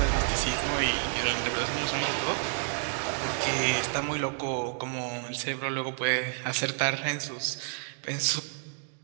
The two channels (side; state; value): left; silent; digital silence